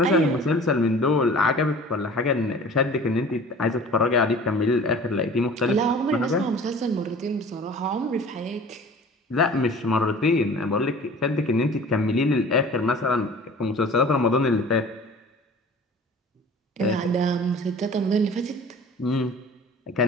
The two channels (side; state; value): both; normal; correlation 0.44